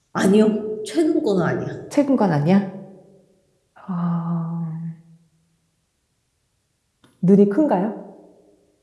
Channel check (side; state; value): both; identical; correlation 1.00